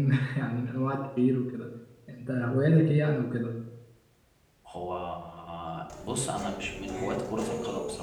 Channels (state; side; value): identical; both; correlation 1.00